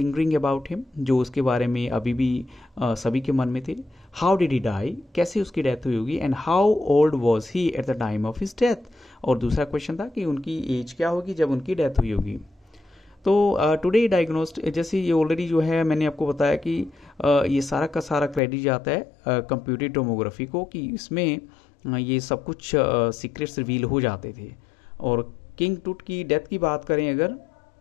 अबाउट हिम, जो उसके बारे में अभी भी सभी के मन में थे। हाउ डिड ही डाई, कैसे उसकी डेथ हुई होगी, and how old was he at the time of his death. और दूसरा क्वेश्चन था कि उनकी एज क्या होगी जब उनकी डेथ हुई होगी। तो टुडे डायग्नोस्ट, जैसे ये ऑलरेडी जो है मैंने आपको बताया कि ये सारा का सारा क्रेडिट जाता है कंप्यूटेड टोमोग्राफी को, कि इसमें ये सब कुछ सीक्रेट्स रिवील हो जाते थे। और किंग टूट की डेथ की बात करें अगर,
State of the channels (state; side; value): drops out; right; at 18.4 s